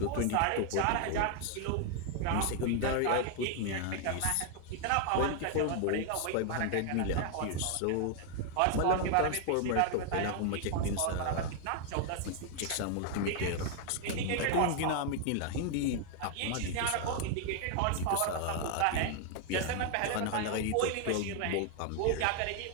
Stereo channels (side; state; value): both; different; correlation 0.00